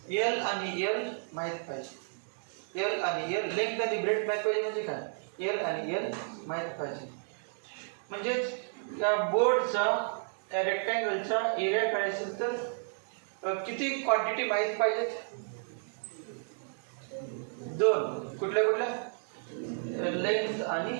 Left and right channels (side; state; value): left; silent; digital silence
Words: एल आणि एल माहित पाहिजे. एल आणि एल लेंथ आणि ब्रेड माहित पाहिजे म्हणजे काय एल आणि एल माहित पाहिजे. म्हणजेच त्या बोर्डचा त्या रेक्टँगलचा एरिया काढायचा असेल तर किती क्वांटिटी माहित पाहिजेत. 2 कुठल्या कुठल्या लेंथ आणि